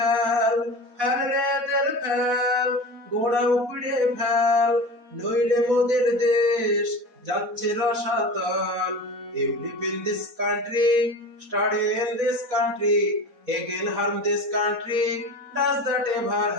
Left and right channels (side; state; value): left; late; 4.0 ms